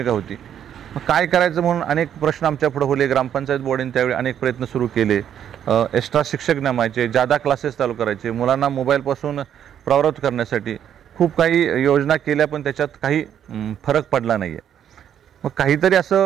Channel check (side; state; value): left; quieter; 9.5 dB